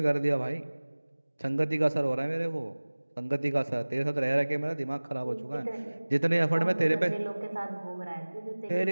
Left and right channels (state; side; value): inverted; both; correlation -1.00